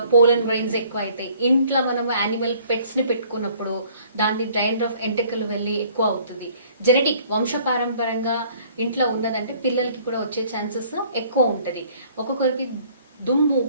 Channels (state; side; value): inverted; both; correlation -0.57